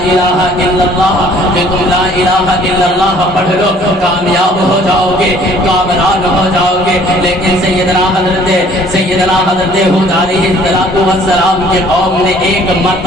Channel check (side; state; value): both; normal; correlation 0.56